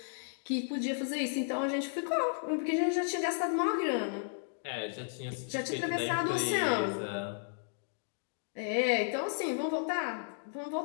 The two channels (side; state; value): right; silent; digital silence